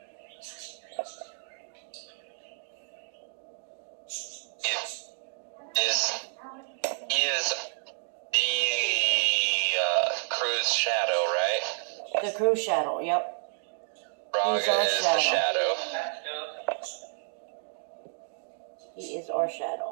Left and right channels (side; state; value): left; silent; digital silence